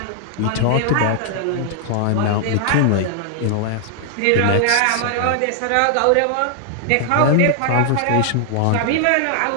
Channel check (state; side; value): different; both; correlation 0.00